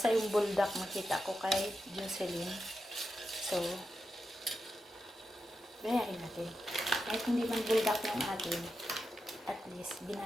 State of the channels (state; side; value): normal; both; correlation 0.88